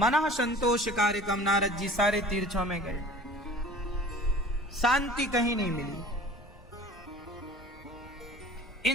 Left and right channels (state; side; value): normal; both; correlation 0.45